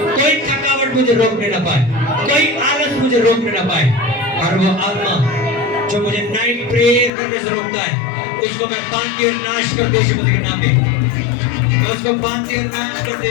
कोई थकावट मुझे रोकने ना पाए, कोई आलस मुझे रोकने ना पाए। और वो आत्मा जो मुझे नाइट प्रेयर करने से रोकता है, उसको मैं बांधती और नाश कर दे यीशु मसीह के नाम में। मैं उसको बांधती और नाश कर दे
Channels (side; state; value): right; drops out; at 7.1 s